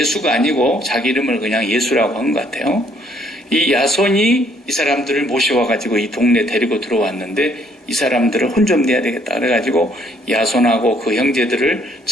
아니고 자기 이름을 그냥 예수라고 한 것 같아요. 이 야손이 이 사람들을 모셔와가지고 이 동네 데리고 들어왔는데 이 사람들을 혼 좀 내야 되겠다 그래가지고 야손하고 그 형제들을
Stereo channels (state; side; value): normal; both; correlation 0.65